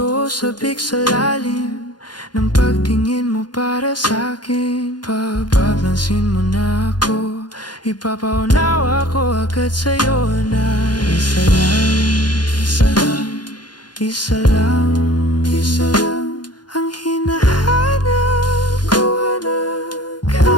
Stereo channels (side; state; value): right; late; 0.70 ms